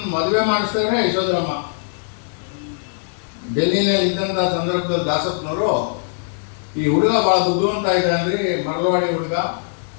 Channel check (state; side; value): silent; right; 58 dB below the other